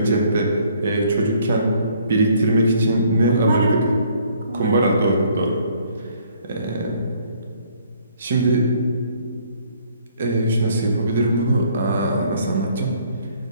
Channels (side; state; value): both; inverted; correlation -0.62